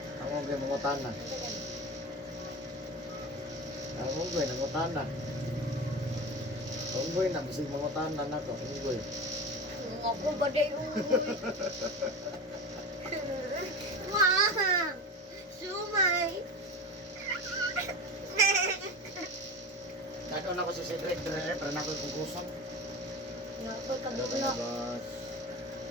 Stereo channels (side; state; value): both; normal; correlation 0.28